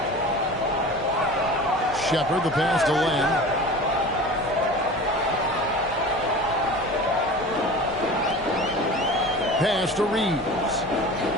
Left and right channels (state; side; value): normal; both; correlation 0.36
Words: Shepard, the pass to Len. Pass to Reeves.